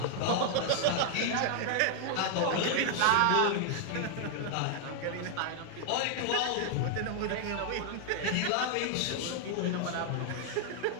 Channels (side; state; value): both; different; correlation 0.00